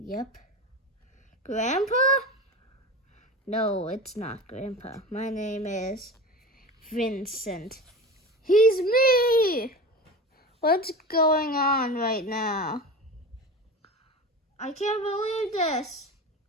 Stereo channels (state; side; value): normal; both; correlation 0.30